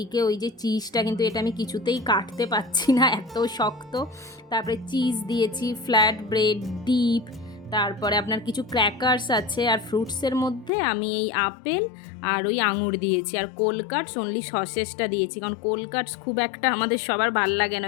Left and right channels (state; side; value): drops out; right; at 10.7 s